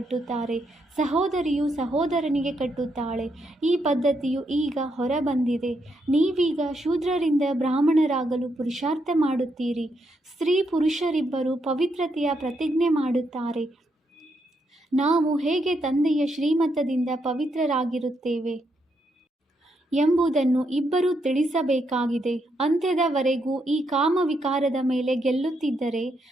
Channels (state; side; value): normal; both; correlation 0.79